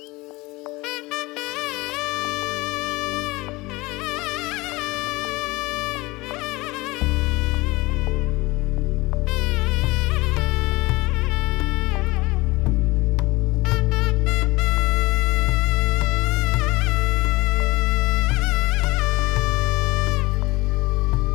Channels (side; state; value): right; quieter; 22.0 dB